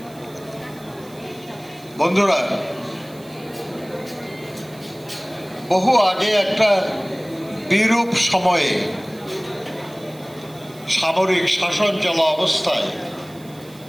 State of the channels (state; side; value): noise; right; hiss, 24 dB below the sound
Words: বন্ধুরা, বহু আগে একটা বিরূপ সময়ে সামরিক শাসন চলা অবস্থায়